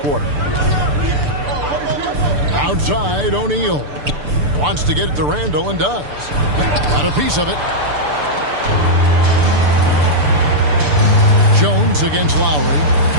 Outside, O'Neal. Wants to get it to Randle and does. Got a piece of it. Jones against Lowry.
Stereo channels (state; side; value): late; left; 6.8 ms